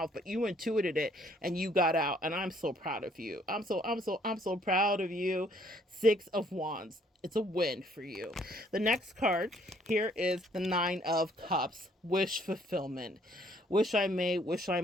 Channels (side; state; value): both; normal; correlation 0.63